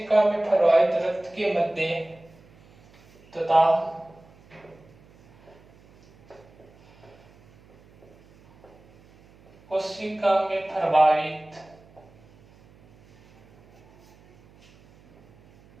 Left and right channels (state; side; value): noise; right; hum, 28 dB below the sound